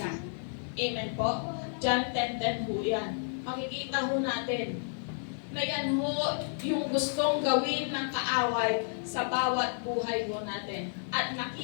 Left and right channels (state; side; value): silent; right; digital silence